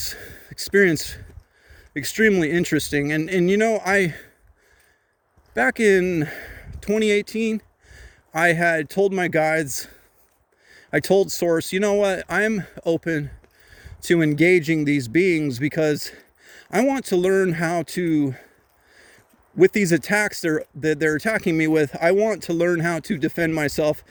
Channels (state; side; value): identical; both; correlation 1.00